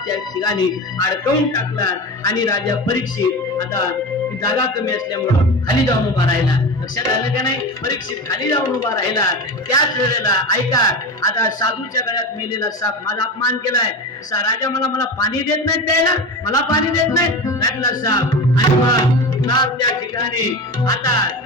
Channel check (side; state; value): both; normal; correlation 0.25